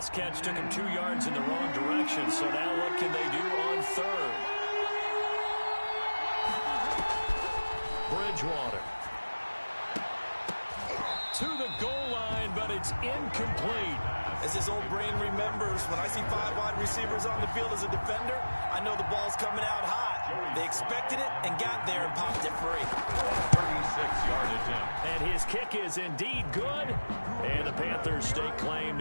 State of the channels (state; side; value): inverted; both; correlation -1.00